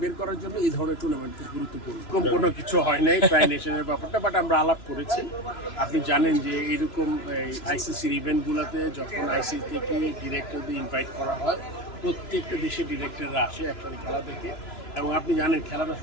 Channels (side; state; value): right; late; 3.0 ms